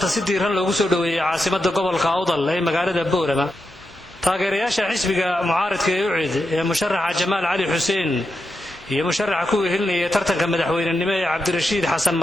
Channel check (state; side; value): normal; both; correlation 0.87